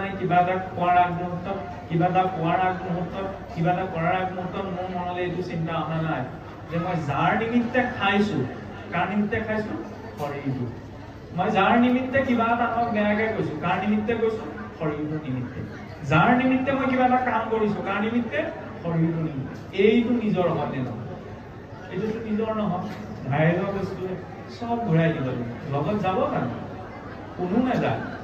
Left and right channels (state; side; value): identical; both; correlation 1.00